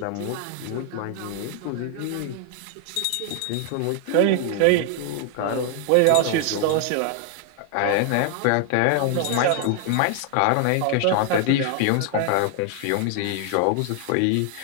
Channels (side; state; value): both; different; correlation 0.00